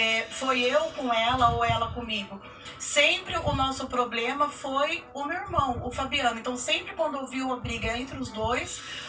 foi eu com ela ou ela comigo. Sempre o nosso problema foi o meu irmão, o Fabiano. Então, sempre quando ouviu a briga entre os dois,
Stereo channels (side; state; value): both; identical; correlation 1.00